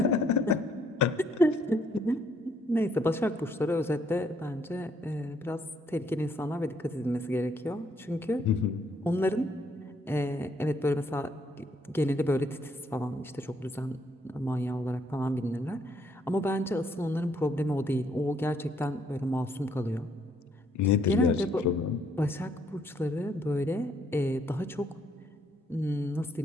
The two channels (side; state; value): both; normal; correlation 0.69